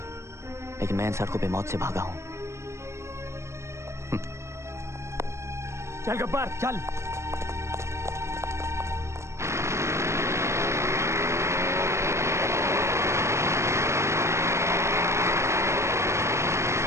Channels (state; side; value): late; left; 0.13 ms